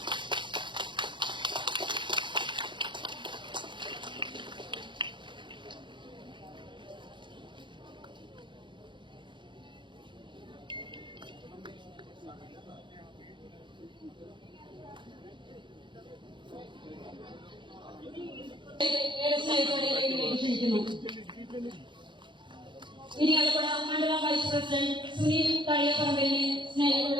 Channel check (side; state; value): left; late; 0.23 ms